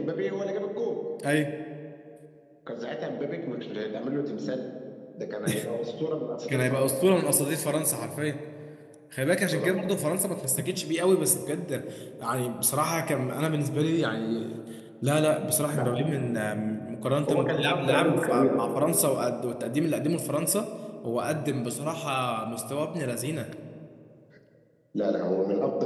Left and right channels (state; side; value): identical; both; correlation 1.00